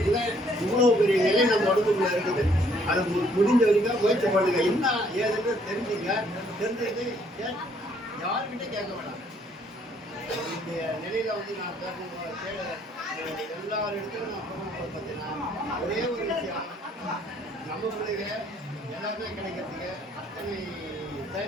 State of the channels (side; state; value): both; normal; correlation 0.65